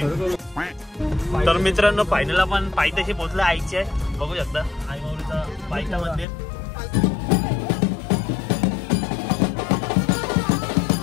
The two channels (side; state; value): right; drops out; at 6.2 s